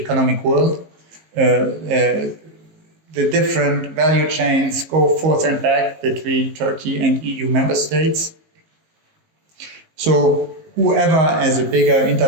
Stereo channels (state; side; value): late; left; 19 ms